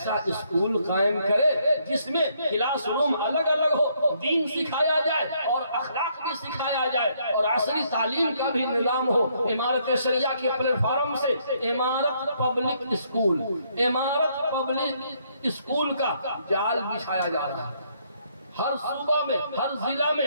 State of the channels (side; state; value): both; inverted; correlation -0.70